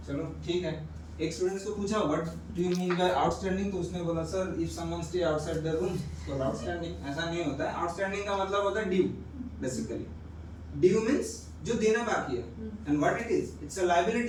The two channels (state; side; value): identical; both; correlation 1.00